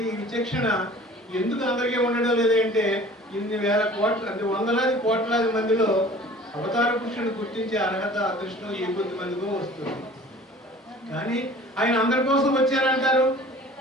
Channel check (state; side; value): normal; both; correlation 0.46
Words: విచక్షణ ఎందుకు అందరికీ ఉండడం లేదంటే ఇన్ని వేల కోట్ల అంటే వందలాది కోట్లాది మందిలో అవతార పురుషుని గుర్తించే అర్హత అదృష్టం ఏ కొద్ది మందికో వస్తుంది. కానీ ఆయన అందరి కోసం వచ్చారంటారు,